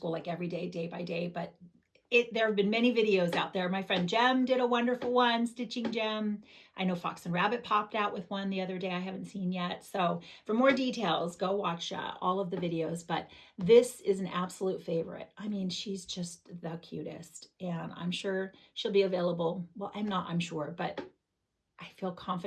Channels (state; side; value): identical; both; correlation 1.00